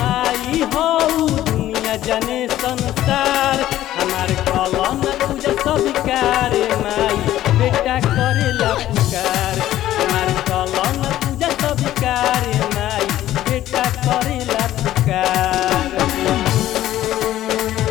हो दुनिया जने संसार। हमारे कलम पूजा स्वीकार माई बेटा करेला पुकार, हमारे कलम पूजा स्वीकार माई बेटा करेला पुकार।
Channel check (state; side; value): quieter; right; 13.5 dB